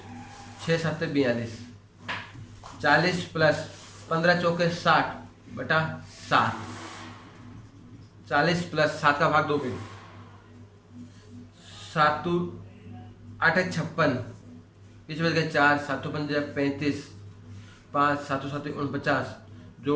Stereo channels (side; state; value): both; identical; correlation 1.00